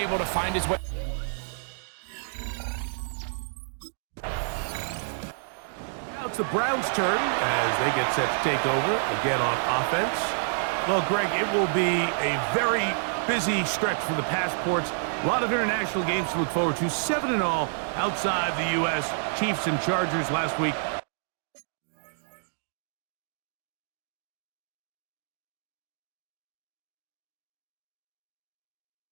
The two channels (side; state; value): left; silent; digital silence